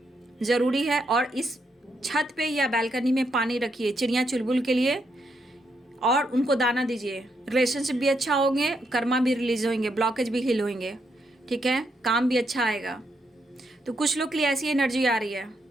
ज़रूरी है। और इस छत पे या बालकनी में पानी रखिए, चिड़िया चुलबुल के लिए और उनको दाना दीजिए। रिलेशनशिप भी अच्छा होंगे, कर्मा भी रिलीज होंगे, ब्लॉकेज भी हिल होंगे, ठीक है, काम भी अच्छा आएगा। तो कुछ लोग के लिए ऐसी एनर्जी आ रही है।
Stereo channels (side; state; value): both; normal; correlation 0.78